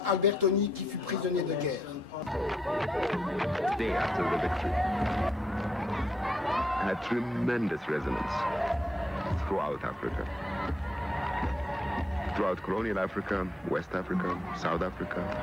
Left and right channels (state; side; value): normal; both; correlation 0.77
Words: Albertoni qui fut prisonnier de guerre. Day after the victory had tremendous resonance throughout Africa. Throughout colonial Africa, West Africa, South Africa,